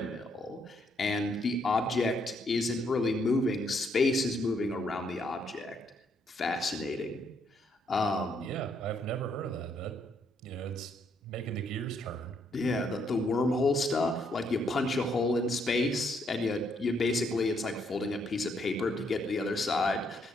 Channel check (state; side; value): normal; both; correlation 0.73